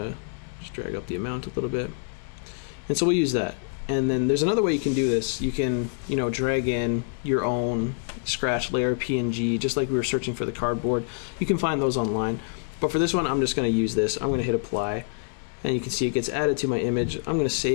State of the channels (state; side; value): silent; right; digital silence